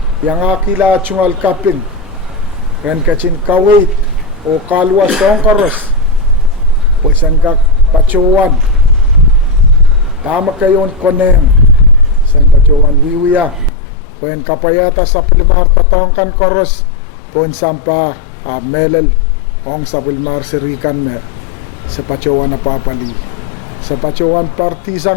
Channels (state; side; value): drops out; right; at 13.7 s